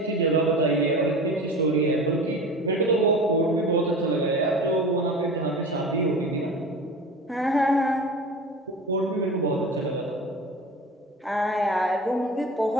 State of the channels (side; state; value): both; normal; correlation 0.34